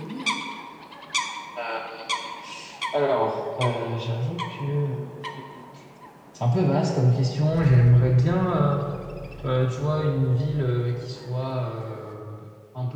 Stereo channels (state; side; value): identical; both; correlation 1.00